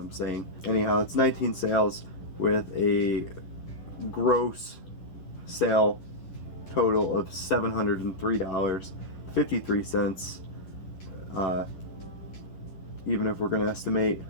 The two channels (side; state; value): right; late; 11 ms